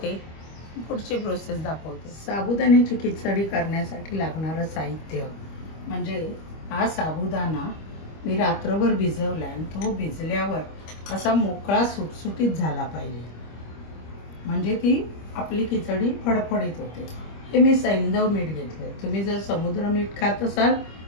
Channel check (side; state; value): right; late; 25 ms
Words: पुढची प्रोसेस दाखवते. साबुदाण्याची खिचडी करण्यासाठी लागणारं साहित्य म्हणजे हा साबुदाणा मी रात्रभर भिजवला आणि तो भिजल्यावर असा मोकळा सुटसुटीत झाला पाहिजे, म्हणजे ती आपली खिचडी फडफडीत होते. हे मी सैंधव मीठ घेतले. तुम्ही जर समुद्र मीठ खात असाल